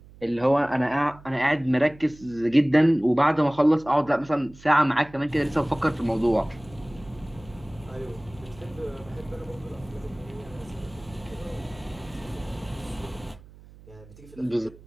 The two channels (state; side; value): noise; right; hum, 22 dB below the sound